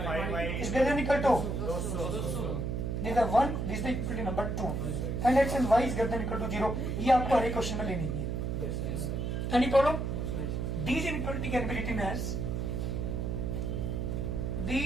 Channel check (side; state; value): right; noise; hum, 1 dB below the sound